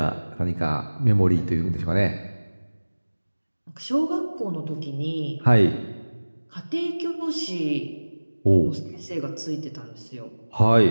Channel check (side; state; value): both; inverted; correlation -1.00